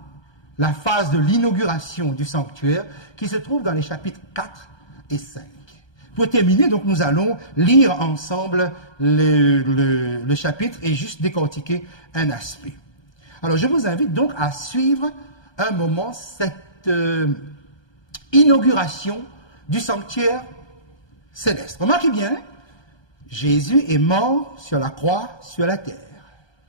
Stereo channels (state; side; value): late; right; 1.2 ms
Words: la phase de l'inauguration du sanctuaire qui se trouve dans les chapitres 4 et 5. Pour terminer, donc, nous allons lire ensemble le chapitre et juste décortiquer un aspect. Alors, je vous invite donc à suivre un moment cette inauguration du sanctuaire céleste. Remarquez bien, Jésus est mort sur la croix, sur la terre.